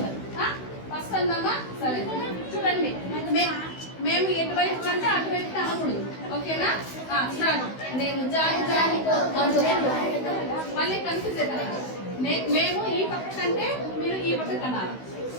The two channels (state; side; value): late; right; 16 ms